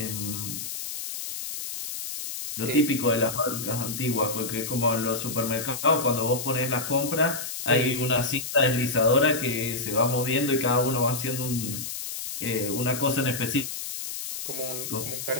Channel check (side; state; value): left; noise; hiss, 6 dB below the sound